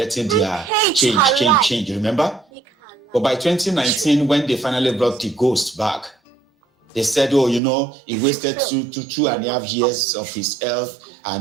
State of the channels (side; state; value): left; drops out; at 7.6 s